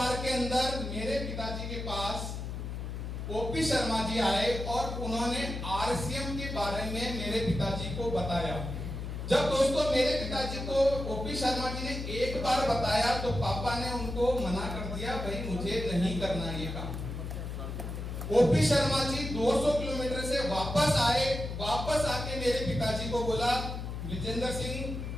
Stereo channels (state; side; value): noise; left; hum, 6 dB below the sound